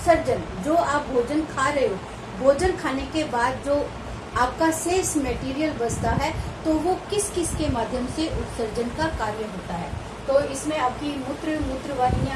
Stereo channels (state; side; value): identical; both; correlation 1.00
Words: जो आप भोजन खा रहे हो, भोजन खाने के बाद जो आपका शेष मटेरियल बचता है तो वो किस किस के माध्यम से उत्सर्जन का कार्य होता है। तो इसमें आपकी मूत्र